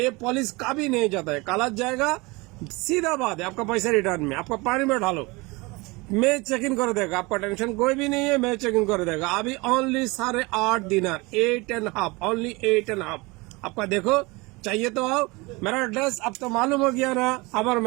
पॉलिश कभी नहीं जाता है, कलर जाएगा, सीधा बात है। आपका पैसा रिटर्न में, आपका पानी में डालो, मैं चेक इन कर देगा। आपका टेंशन कोई भी नहीं है, मैं चेक इन कर देगा। अभी ओनली 8.5 दिनार, 8.5, ओनली 8.5। आपका देखो चाहिए तो आओ। मेरा एड्रेस अब तो मालूम हो गया ना। अब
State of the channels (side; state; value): left; quieter; 24.8 dB